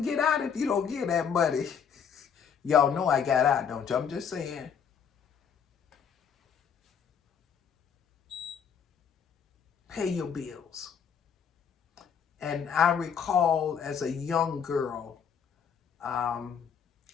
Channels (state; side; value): quieter; right; 7.3 dB